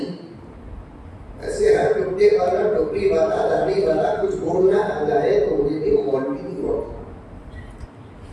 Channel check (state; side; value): identical; both; correlation 1.00